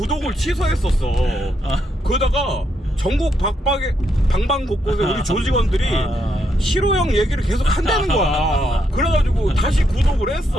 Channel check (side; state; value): both; normal; correlation 0.78